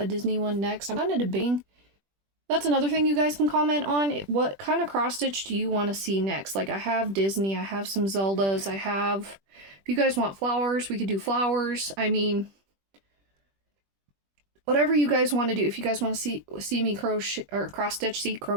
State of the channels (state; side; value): late; left; 20 ms